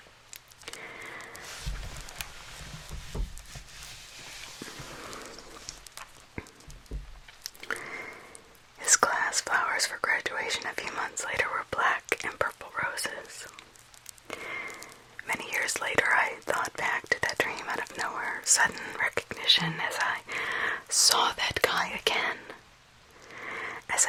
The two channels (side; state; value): both; identical; correlation 1.00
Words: His class flowers for graduation a few months later were black and purple roses. Many years later, I thought back to that dream out of nowhere, sudden recognition as I saw that guy again. As